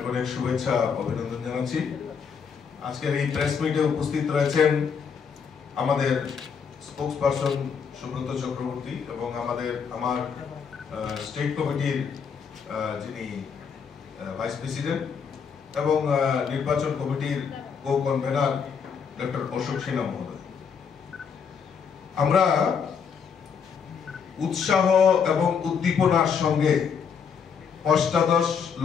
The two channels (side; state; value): right; quieter; 6.6 dB